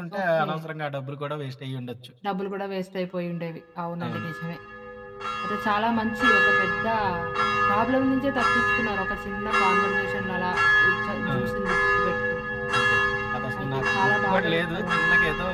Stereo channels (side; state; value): both; identical; correlation 1.00